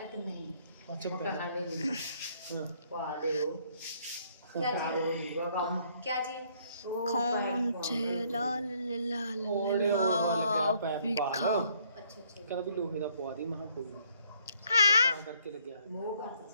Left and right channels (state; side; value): inverted; both; correlation -0.66